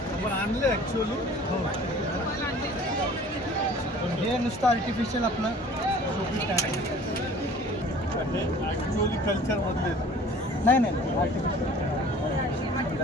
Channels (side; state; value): both; normal; correlation 0.48